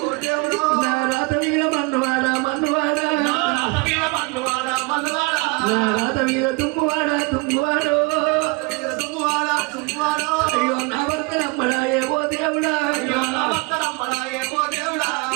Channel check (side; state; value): left; quieter; 28.2 dB